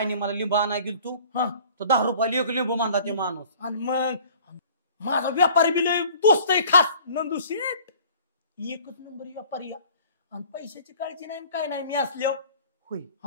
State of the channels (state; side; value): inverted; both; correlation -0.49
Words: मला लिंबू आणायला गेलो तू, हा तर 10 रुपयाला एक लिंबू मानला ते माणूस. आणि मग माझा व्यापारी बी लय दोस्त आहे खास, नंदू शेठ, एकच नंबर व्यापारी आहे. आणि पैशाची काळजी नाही काय नाही मी असल्यावर. होय.